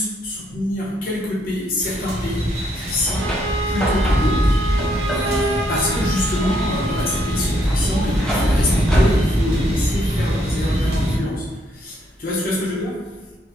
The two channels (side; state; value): both; normal; correlation 0.72